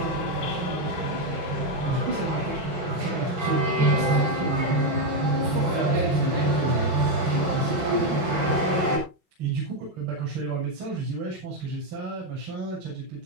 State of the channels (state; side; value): late; left; 6.3 ms